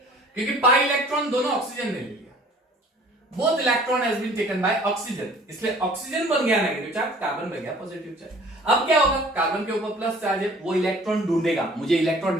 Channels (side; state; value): both; normal; correlation 0.51